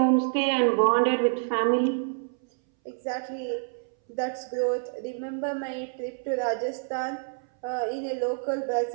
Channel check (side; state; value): left; silent; 60 dB below the other